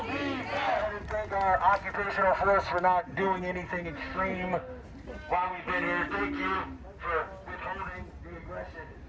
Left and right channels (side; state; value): both; identical; correlation 1.00